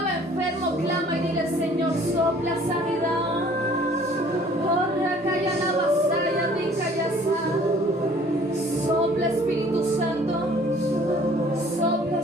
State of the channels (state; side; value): normal; both; correlation 0.54